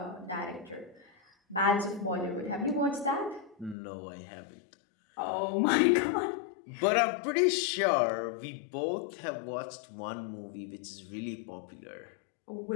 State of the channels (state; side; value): drops out; right; at 3.8 s